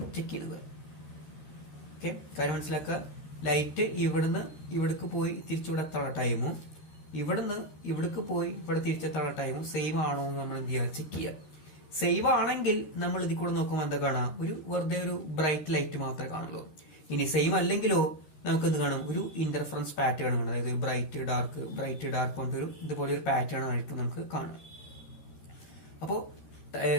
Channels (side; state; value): right; late; 13 ms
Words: ചെക്ക് ചെയ്യുന്നത്. ഓക്കെ, കാര്യം മനസ്സിലാക്കുക, ലൈറ്റ് ഇവിടുന്ന് ഇവിടേക്ക് പോയി തിരിച്ചിവിടെത്തുള്ള ടൈമും ഇവിടുന്ന് ഇവിടേക്ക് പോയി ഇവിടെ തിരിച്ചെത്തുള്ള ടൈമും സെയിം ആണോ എന്ന് നമ്മൾ എന്ത് ചെയ്യുക, ചെക്ക് ചെയ്യുക. സെയിം ആണെങ്കിൽ നമ്മൾ ഇതിൽ കൂടെ നോക്കുമ്പോൾ എന്താ കാണാം, വെറുതെ ഒരു ബ്രൈറ്റ് ലൈറ്റ് മാത്രമേ കാണുള്ളൂ. ഇനി സെയിം അല്ലെങ്കിലോ നമുക്ക് എന്ത് കാണും, ഒരു ഇന്റർഫറൻസ് പാറ്റേൺ കാണും. അതായത് ബ്രൈറ്റ് ഡാർക്ക് കൊണ്ടൊരു ഇതുപോലെ ഒരു പാറ്റേൺ ആയിരിക്കും നമുക്ക് കാണാം. അപ്പോ